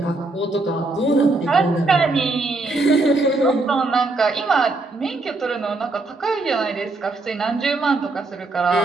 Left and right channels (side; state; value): left; quieter; 3.3 dB